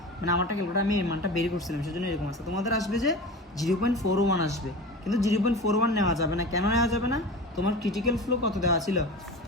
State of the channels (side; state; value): both; normal; correlation 0.32